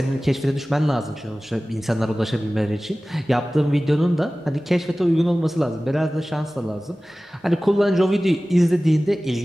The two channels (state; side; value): normal; both; correlation 0.97